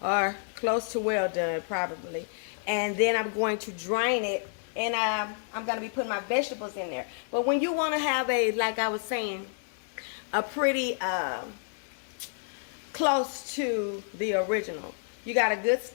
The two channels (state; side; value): silent; right; digital silence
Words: Or close to well done, probably. And then I'm going to drain it, and I'm going to be putting my vegetables in there. But when you want to have a, like I was saying, a pretty close to the original, you got a good